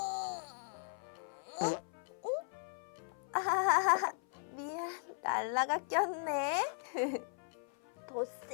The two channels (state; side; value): silent; right; 53 dB below the other